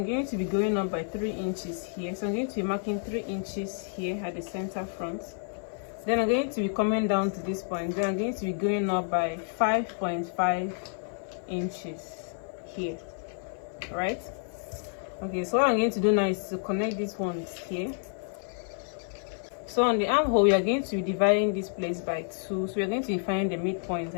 going to be going up by 3 inches here. So I'm going to be marking 3 inches here at the center front. Then I'm going to be coming down to this point. Then I'm going to be going up by 5.5 inches here. Alright? Okay, so what I'm going to do now is to connect these ones here. So on the armhole, we are going to be dividing this place by 2. So we are going to be finding the midpoint,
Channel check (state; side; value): silent; right; 56 dB below the other